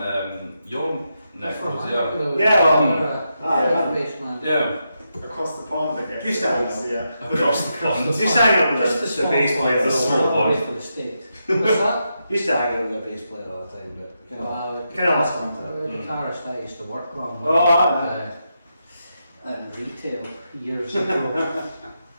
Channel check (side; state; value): both; inverted; correlation -0.84